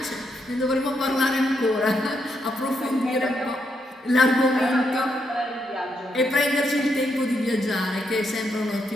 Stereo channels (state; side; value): normal; both; correlation 0.79